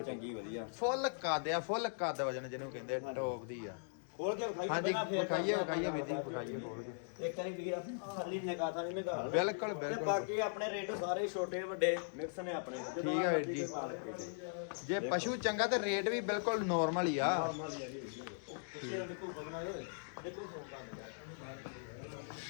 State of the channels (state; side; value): silent; right; digital silence